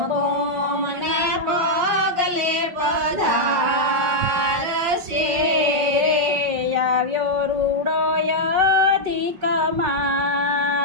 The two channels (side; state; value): left; late; 5.5 ms